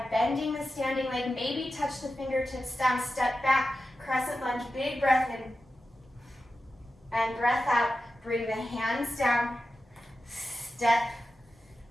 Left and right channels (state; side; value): normal; both; correlation 0.92